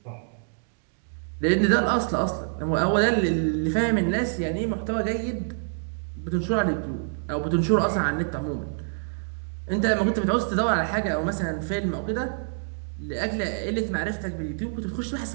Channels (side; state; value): left; silent; digital silence